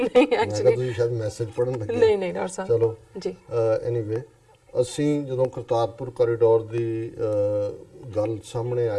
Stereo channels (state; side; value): identical; both; correlation 1.00